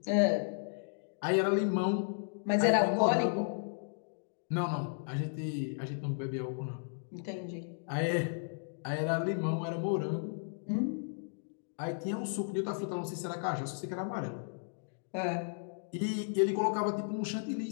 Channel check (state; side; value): silent; right; digital silence